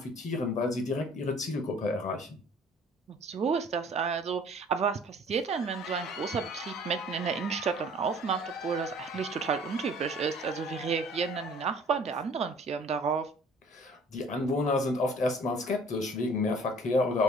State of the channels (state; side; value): normal; both; correlation 0.52